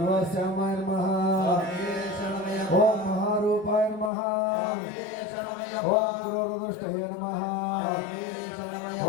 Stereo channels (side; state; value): right; drops out; at 4.1 s